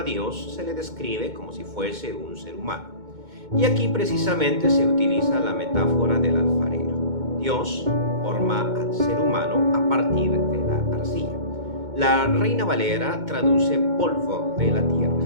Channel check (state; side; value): late; left; 2.2 ms